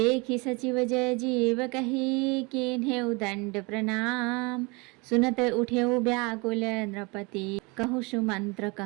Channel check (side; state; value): left; quieter; 27.9 dB